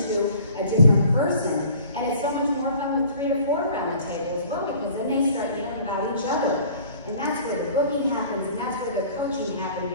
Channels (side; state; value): both; inverted; correlation -0.49